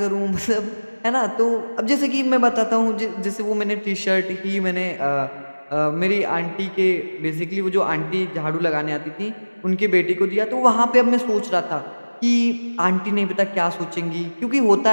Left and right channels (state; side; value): inverted; both; correlation -1.00